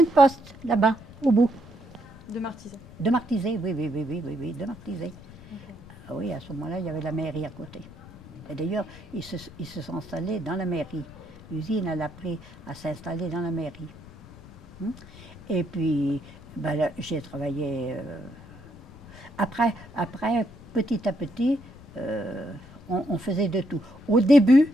poste, là-bas, au bout. De Martizet. De Martizet, oui, de Martizet. Okay. Ah oui, à ce moment-là, il y avait la mairie à côté. Et d'ailleurs, ils se sont installés dans la mairie. L'usine, elle a pris à s'installer dans la mairie. Et puis, ben, j'ai travaillé... Après, petit à petit, on faisait de tout. Au début,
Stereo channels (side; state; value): left; noise; rumble, 20 dB below the sound